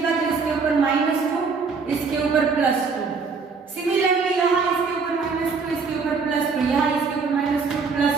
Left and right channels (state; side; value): quieter; left; 5.0 dB